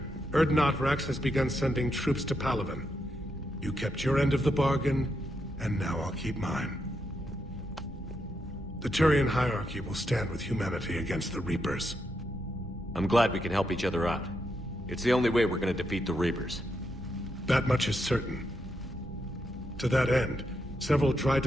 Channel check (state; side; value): normal; both; correlation 0.82